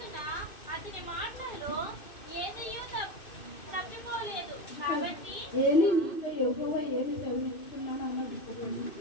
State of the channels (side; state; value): right; late; 2.6 ms